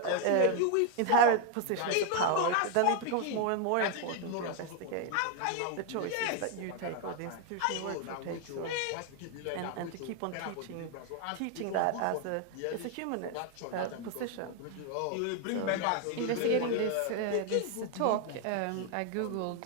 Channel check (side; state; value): both; different; correlation 0.01